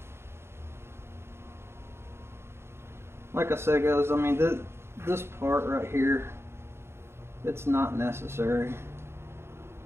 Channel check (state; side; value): late; left; 0.12 ms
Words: Like I said, guys, I mean, this part right here, it's not necessary.